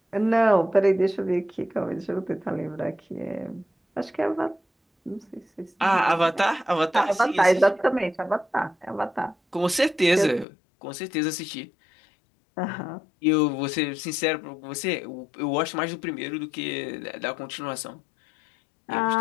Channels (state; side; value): drops out; right; at 10.5 s